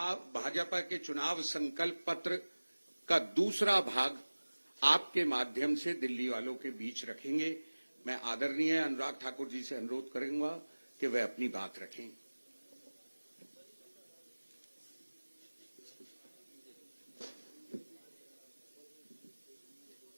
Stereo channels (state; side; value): inverted; both; correlation -1.00